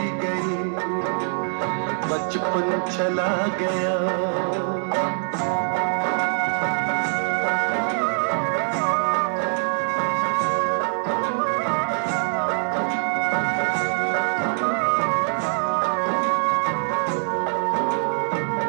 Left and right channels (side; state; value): left; silent; digital silence